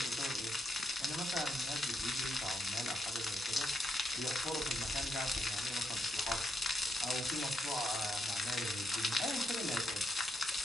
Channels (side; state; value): both; normal; correlation 0.78